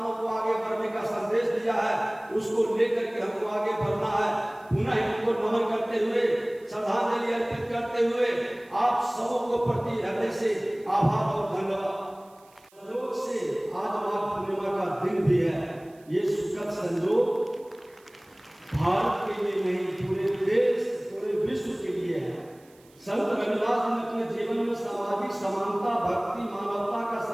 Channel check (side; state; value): right; noise; hiss, 30 dB below the sound